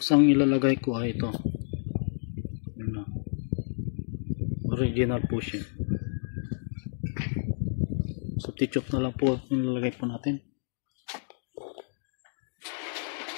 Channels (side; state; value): right; silent; digital silence